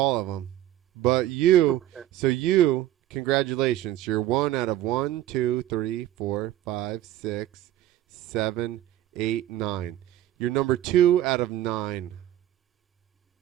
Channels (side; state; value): left; quieter; 13.6 dB